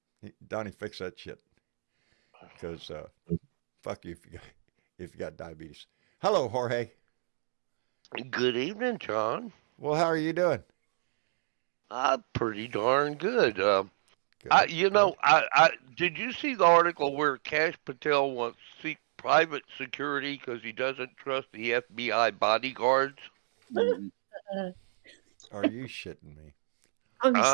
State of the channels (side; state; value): left; silent; digital silence